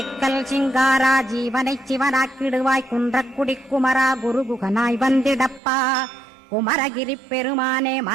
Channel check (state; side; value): drops out; left; at 5.6 s